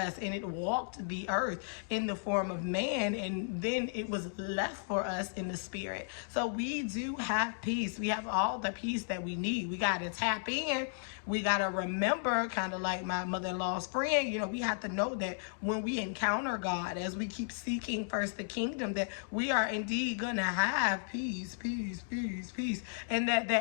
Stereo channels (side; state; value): right; silent; digital silence